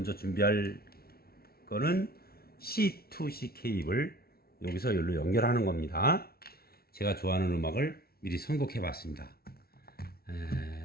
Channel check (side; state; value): right; late; 0.44 ms